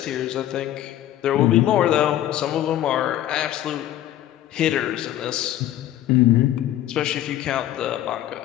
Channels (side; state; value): right; quieter; 12.8 dB